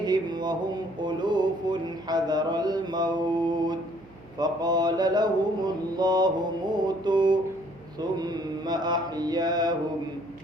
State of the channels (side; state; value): right; noise; hum, 24 dB below the sound